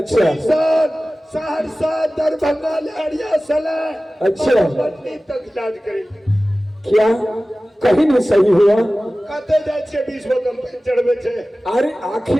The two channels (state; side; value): normal; both; correlation 0.97